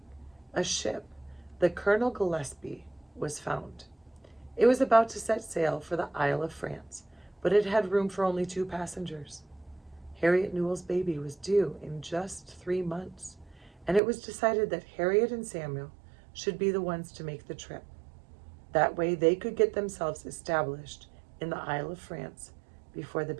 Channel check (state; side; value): drops out; left; at 14.0 s